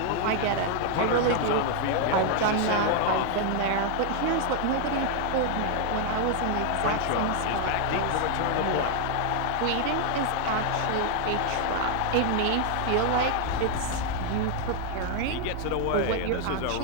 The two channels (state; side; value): different; both; correlation 0.00